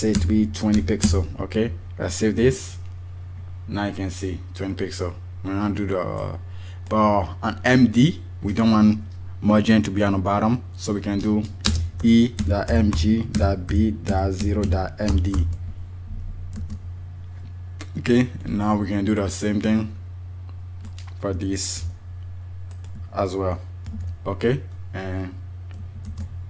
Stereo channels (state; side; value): identical; both; correlation 1.00